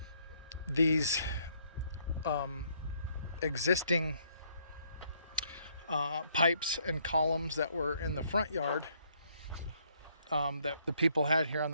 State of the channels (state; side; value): inverted; both; correlation -0.68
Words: these existing pipes and columns that were in the front yard that the people had here on